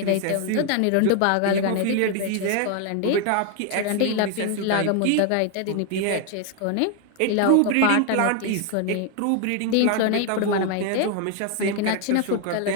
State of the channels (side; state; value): both; different; correlation 0.01